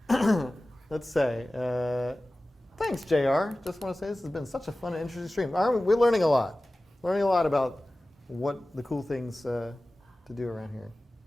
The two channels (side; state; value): both; normal; correlation 0.96